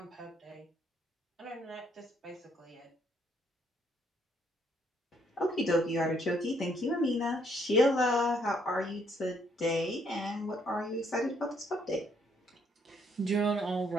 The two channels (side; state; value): both; normal; correlation 0.69